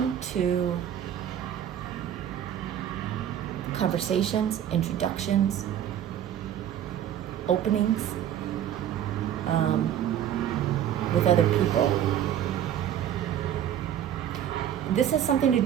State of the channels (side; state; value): left; quieter; 10.4 dB